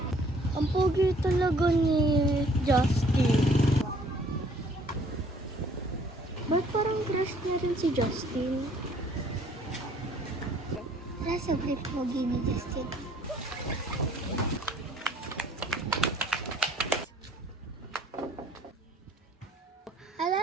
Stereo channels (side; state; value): both; normal; correlation 0.59